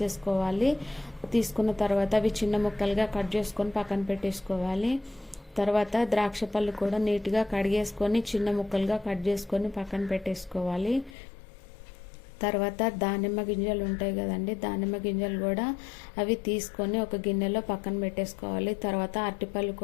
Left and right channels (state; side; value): drops out; right; at 11.2 s